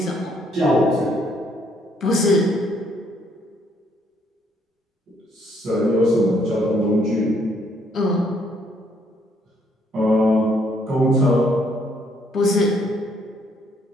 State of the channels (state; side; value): normal; both; correlation 0.69